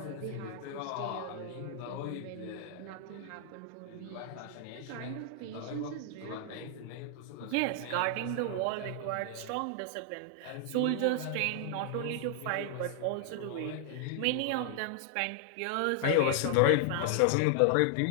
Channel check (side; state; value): both; different; correlation 0.00